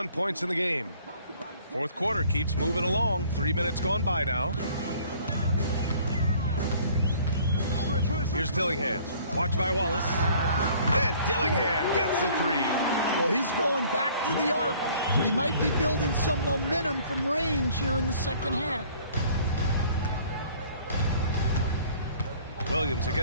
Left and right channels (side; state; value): both; inverted; correlation -0.55